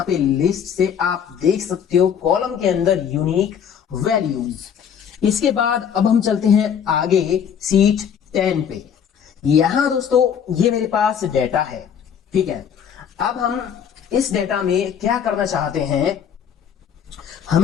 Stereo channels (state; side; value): quieter; right; 8.1 dB